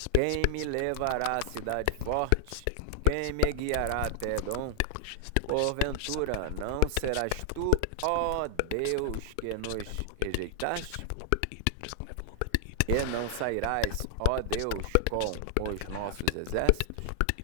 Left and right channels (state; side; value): different; both; correlation 0.00